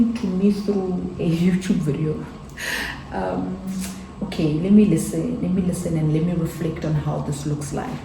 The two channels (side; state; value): both; identical; correlation 1.00